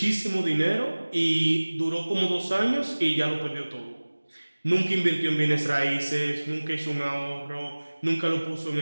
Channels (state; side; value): inverted; both; correlation -1.00